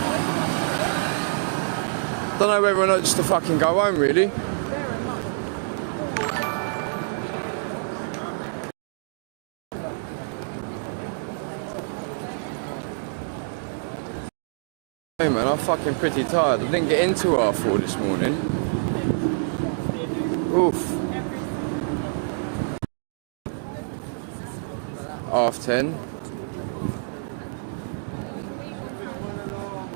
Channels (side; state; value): left; silent; digital silence